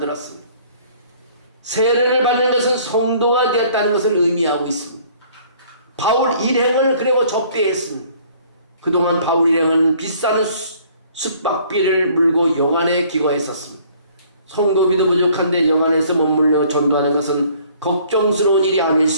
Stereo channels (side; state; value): both; inverted; correlation -0.57